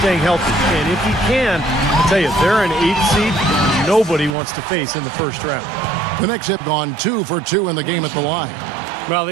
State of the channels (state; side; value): drops out; left; at 4.4 s